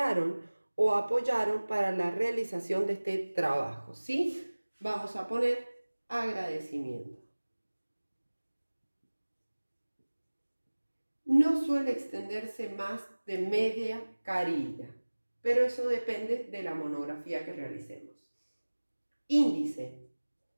o apoyaron para la realización de este trabajo, ¿sí? Vamos a poner agradecimiento. No suele extenderse más de media carilla, pero eso depende de la monografía que realicemos. Índice.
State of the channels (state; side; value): inverted; both; correlation -1.00